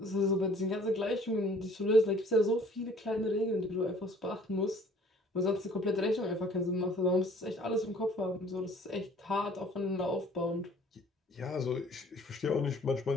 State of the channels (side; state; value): both; normal; correlation 0.54